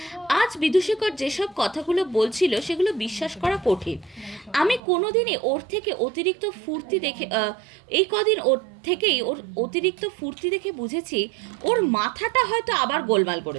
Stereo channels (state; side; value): drops out; left; at 4.8 s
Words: আজ বিদূষকর যেসব কথাগুলো বলছিল সেগুলো বিশ্বাস করা কঠিন। আমি কোনোদিনই ওর থেকে অতিরিক্ত ফুর্তি দেখে ওর অতিরিক্ত ফুর্তি দেখে বুঝেছি ওর মাথাটা হয়তো আবার গোলমাল